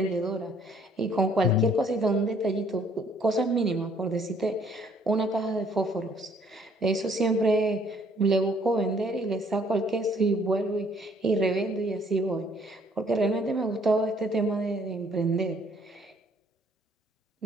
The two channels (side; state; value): both; normal; correlation 0.62